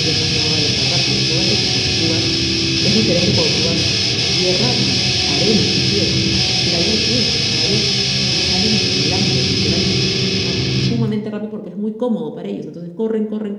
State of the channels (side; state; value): both; identical; correlation 1.00